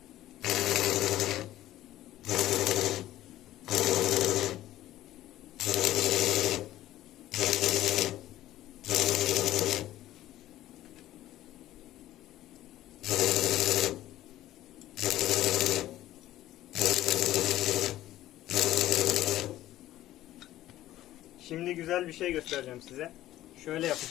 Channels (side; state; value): right; quieter; 14.3 dB